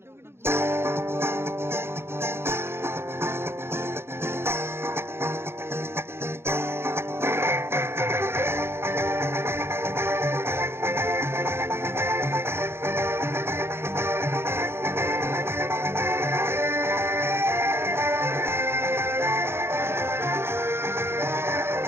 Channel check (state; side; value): late; left; 0.12 ms